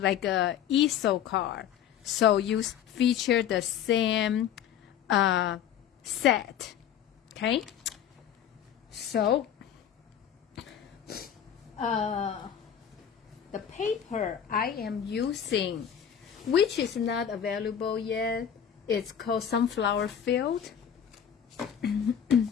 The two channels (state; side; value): quieter; right; 9.0 dB